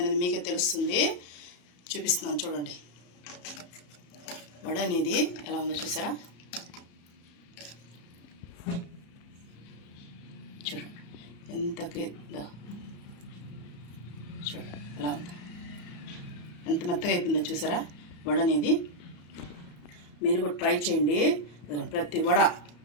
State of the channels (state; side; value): late; right; 34 ms